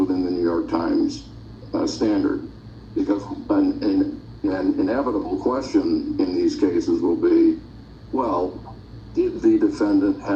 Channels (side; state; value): both; identical; correlation 1.00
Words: the New York Times standard. Because an inevitable question in these cases will be, well, did the defendant